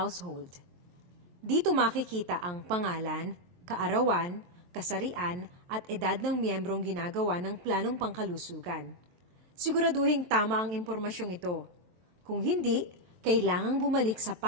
Dito makikita ang pangalan, kaarawan, kasarian at edad ng miyembrong ginagawa ng planong pangkalusugan. Siguraduhin tama ang impormasyong ito. Kung hindi, kailangang bumalik sa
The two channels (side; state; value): left; late; 23 ms